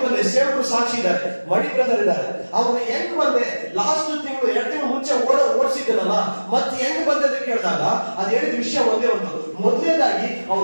ಬಂದೆ. ಸೇವಕರು ಸಾಕ್ಷಿ ಇದ್ದಾರೆ, ಮಣಿ ಬ್ರದರ್ ಇದ್ದಾರೆ. ಅವ್ರು ಹೆಂಗ್ ಬಂದೆ, ಲಾಸ್ಟ್ ತಿಂಗಳು 2 ತಿಂಗಳು ಮುಂಚೆ ಓಡಿಸಿದ್ದನಲ್ಲ, ಮತ್ತೆ ಹೆಂಗ್ ಬಂದೆ ಅಂತ ಕೇಳಿದಾಗ ಅದು ಹೇಳಿದ ವಿಷಯ ಒಂದೇ ಒಂದು. ಮೊದಲನೇದಾಗಿ ಅವ್ರ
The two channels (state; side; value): inverted; both; correlation -1.00